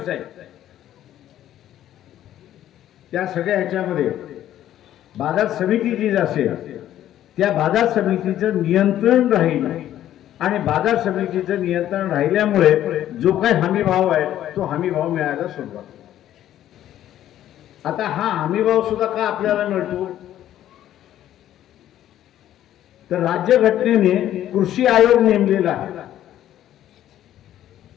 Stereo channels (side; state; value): right; quieter; 12.1 dB